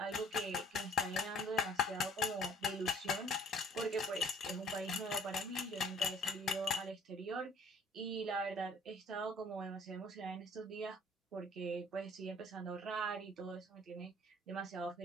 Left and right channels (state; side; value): normal; both; correlation 0.53